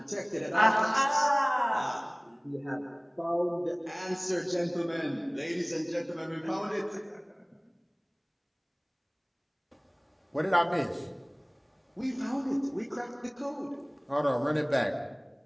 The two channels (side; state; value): both; identical; correlation 1.00